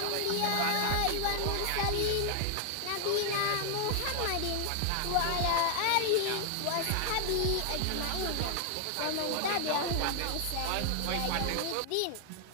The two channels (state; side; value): different; both; correlation 0.00